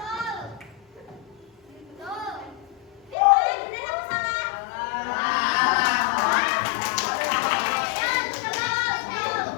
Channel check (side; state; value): right; drops out; at 3.2 s